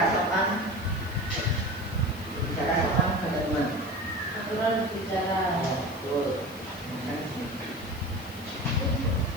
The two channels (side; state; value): left; noise; hiss, 20 dB below the sound